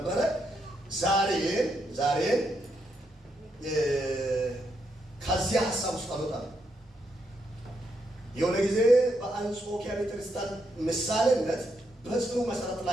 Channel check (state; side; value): normal; both; correlation 0.79